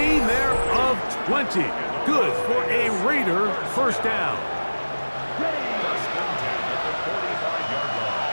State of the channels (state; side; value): inverted; both; correlation -1.00